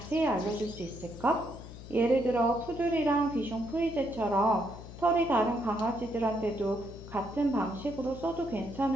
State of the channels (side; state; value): left; noise; hum, 14 dB below the sound